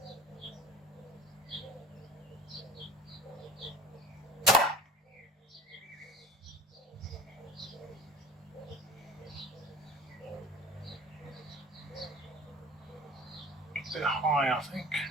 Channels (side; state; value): both; normal; correlation 0.40